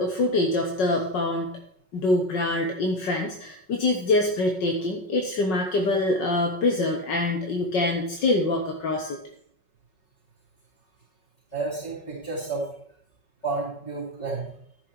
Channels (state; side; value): late; right; 5.4 ms